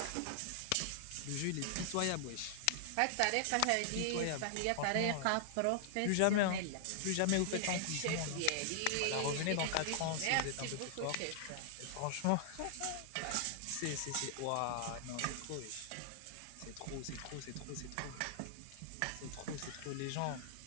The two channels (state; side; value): different; both; correlation 0.00